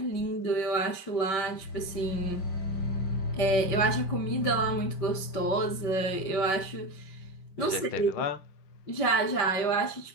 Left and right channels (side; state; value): right; late; 5.8 ms